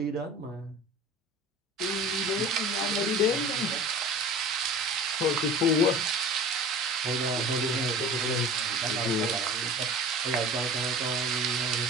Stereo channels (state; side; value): normal; both; correlation 0.39